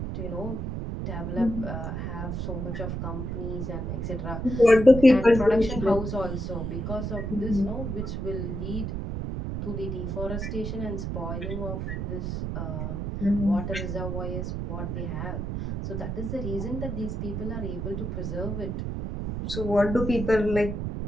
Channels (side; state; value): right; noise; rumble, 3 dB below the sound